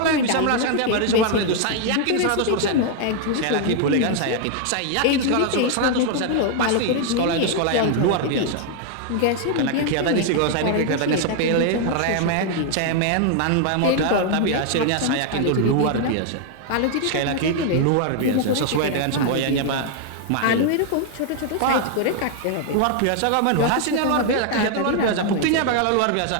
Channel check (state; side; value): different; both; correlation 0.00